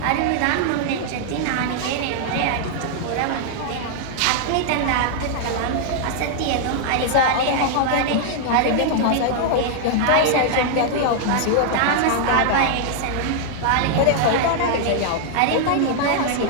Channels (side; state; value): both; different; correlation -0.01